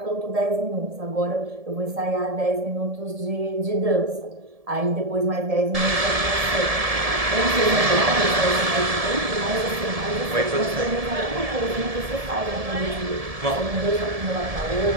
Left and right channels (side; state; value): left; late; 1.7 ms